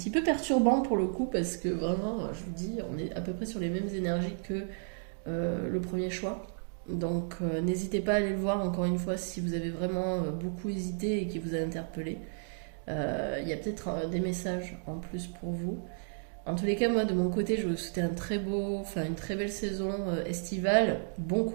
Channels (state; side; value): silent; left; digital silence